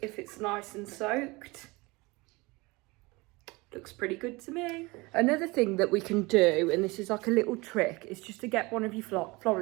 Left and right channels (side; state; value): left; quieter; 24.0 dB